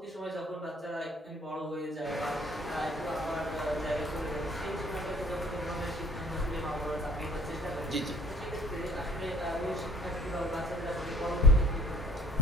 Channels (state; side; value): normal; both; correlation 0.54